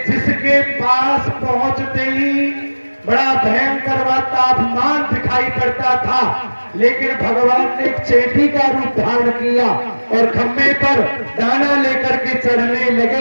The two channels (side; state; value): both; inverted; correlation -1.00